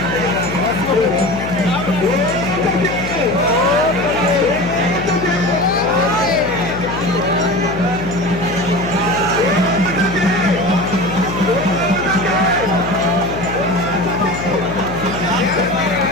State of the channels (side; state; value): left; noise; hum, 8 dB below the sound